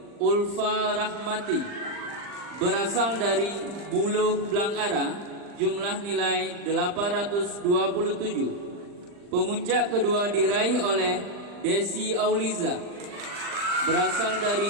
Ulfa Rahmati berasal dari Buluh Blangara, jumlah nilai 827. Pemuncak kedua diraih oleh Desi Auliza berasal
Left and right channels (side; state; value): left; late; 40 ms